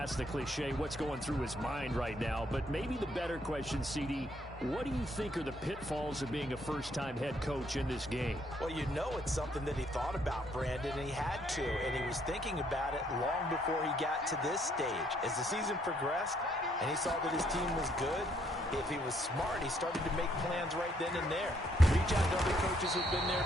the cliche, what's going through his mind right now? But maybe the better question, CD, what do you think are the pitfalls of being a first-time head coach in this game? Well, you know it's something that he thought about, Brandon, and he had to. And he was thinking about it long before he got to this stage. As the season progressed and he saw that his team was good, if he was smart, he started to make plans right then and there. Reach out to other coaches who've been there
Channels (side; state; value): both; normal; correlation 0.69